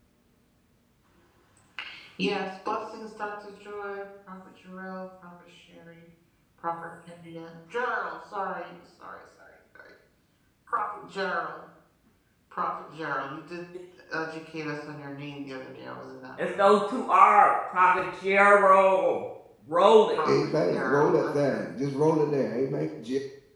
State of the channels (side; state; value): both; identical; correlation 1.00